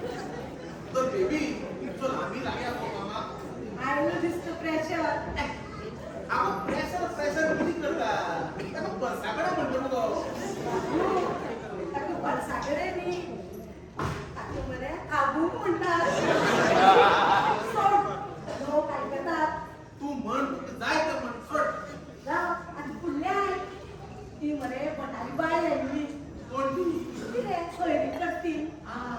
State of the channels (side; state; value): both; identical; correlation 1.00